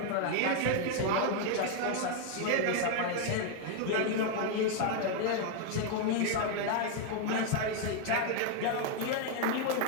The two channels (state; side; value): different; both; correlation 0.00